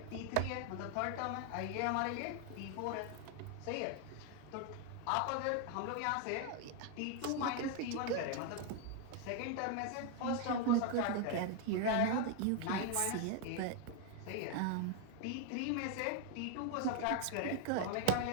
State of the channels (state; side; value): different; both; correlation 0.01